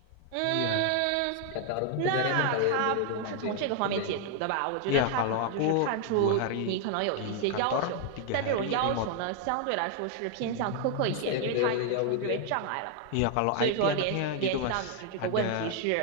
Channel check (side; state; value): both; different; correlation 0.00